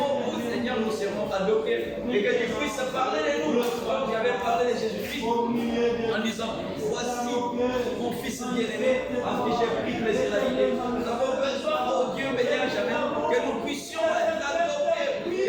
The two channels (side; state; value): both; identical; correlation 1.00